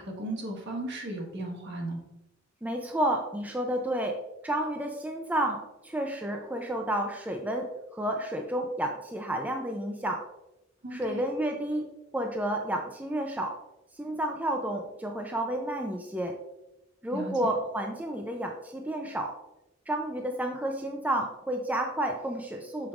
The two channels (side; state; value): both; normal; correlation 0.50